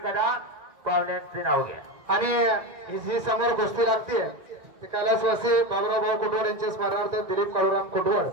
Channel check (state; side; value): late; left; 1.9 ms